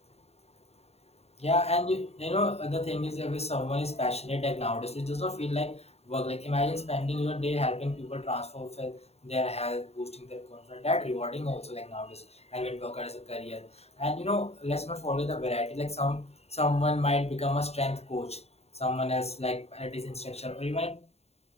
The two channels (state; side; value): late; right; 0.30 ms